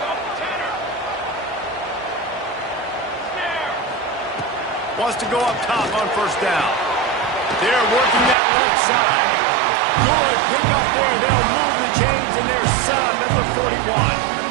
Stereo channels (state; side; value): drops out; left; at 8.3 s